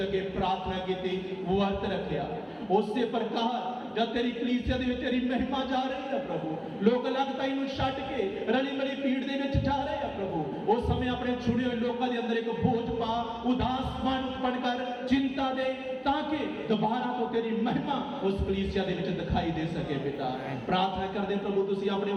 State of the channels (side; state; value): both; identical; correlation 1.00